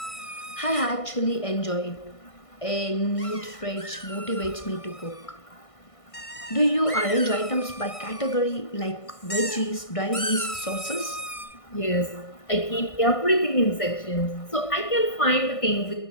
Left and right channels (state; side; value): late; right; 1.6 ms